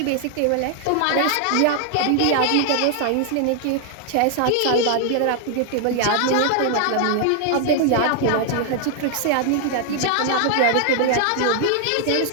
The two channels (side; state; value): both; different; correlation 0.00